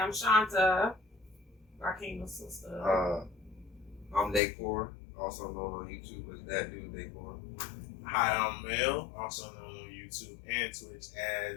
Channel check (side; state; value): right; drops out; at 4.4 s